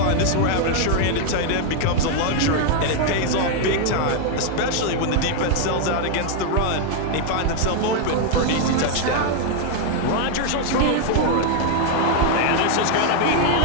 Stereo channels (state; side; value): different; both; correlation 0.00